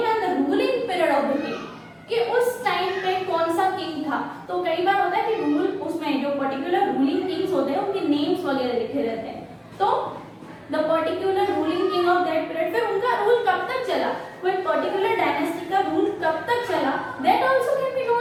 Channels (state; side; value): identical; both; correlation 1.00